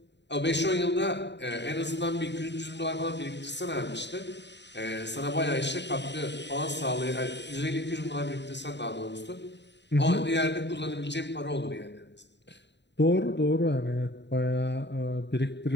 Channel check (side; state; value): right; late; 0.51 ms